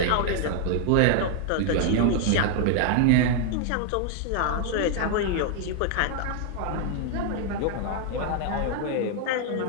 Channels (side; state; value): both; different; correlation 0.00